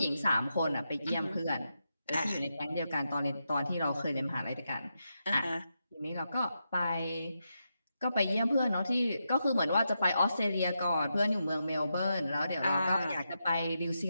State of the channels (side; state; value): both; inverted; correlation -0.85